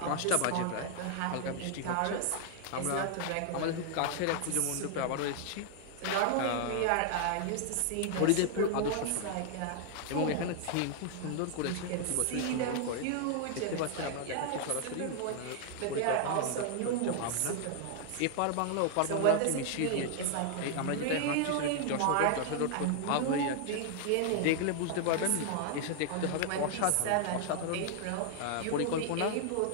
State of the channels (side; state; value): both; different; correlation 0.00